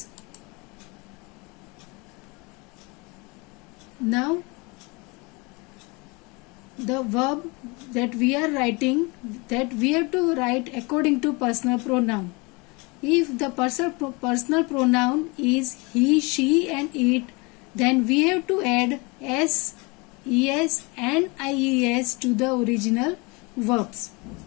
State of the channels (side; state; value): right; quieter; 27.6 dB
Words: Now the verb that we are writing, that we have to write according to personal pronoun. If the personal pronoun is he, she and it, then we have to add s, es and ies to the original verbs.